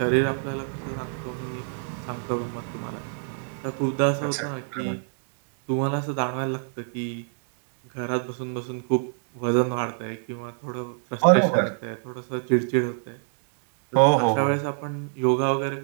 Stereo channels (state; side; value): silent; left; 60 dB below the other